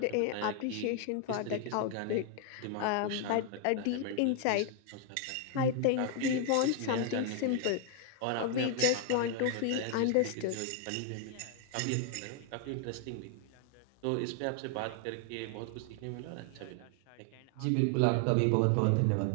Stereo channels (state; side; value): different; both; correlation 0.00